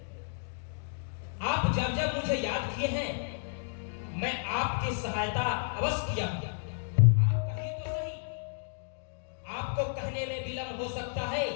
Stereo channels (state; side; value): silent; right; digital silence